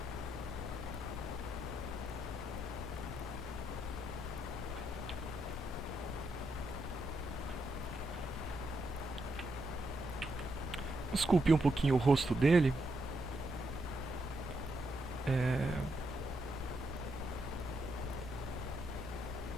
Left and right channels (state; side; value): normal; both; correlation 0.80